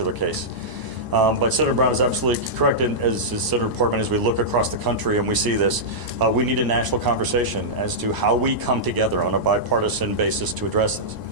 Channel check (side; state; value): left; late; 1.0 ms